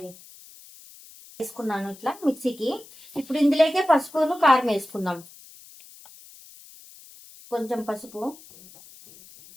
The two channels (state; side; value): noise; left; hiss, 21 dB below the sound